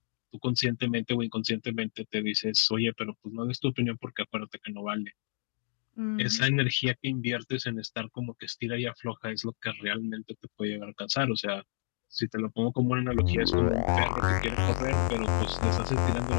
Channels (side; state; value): right; silent; digital silence